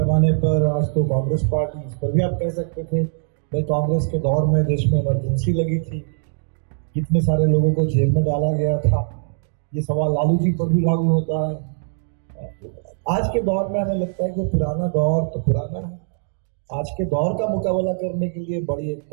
पर आज तो कांग्रेस पार्टी, इस पर भी आप कह सकते थे भाई कांग्रेस के दौर में देश में इमरजेंसी लगी थी, कितने सारे लोगों को जेल में डाला गया था, ये सवाल लालू जी पर भी लागू होता है। आज के दौर में हमें लगता है कि पुराना दौर तो पुराना है, आज के दौर का मुकाबला करने के लिए बड़ी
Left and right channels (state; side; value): silent; left; digital silence